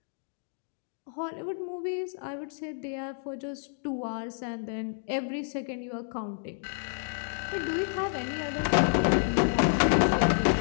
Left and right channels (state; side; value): silent; right; digital silence